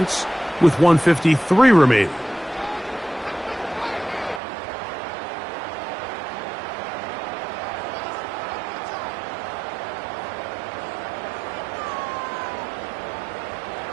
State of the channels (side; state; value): left; drops out; at 4.4 s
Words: with 1:53 remaining.